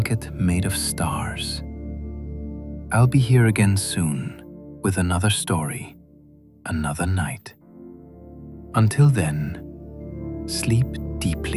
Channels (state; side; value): identical; both; correlation 1.00